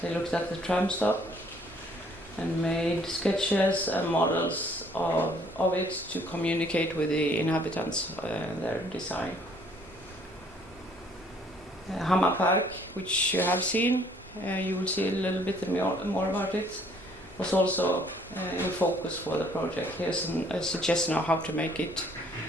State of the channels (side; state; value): both; normal; correlation 0.61